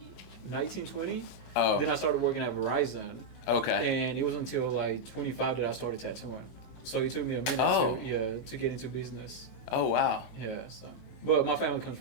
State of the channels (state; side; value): late; right; 28 ms